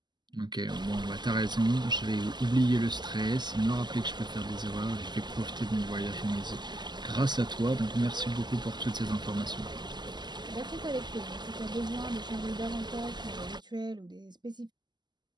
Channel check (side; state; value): left; late; 0.21 ms